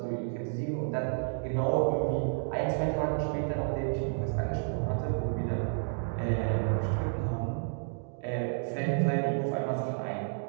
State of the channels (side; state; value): left; silent; digital silence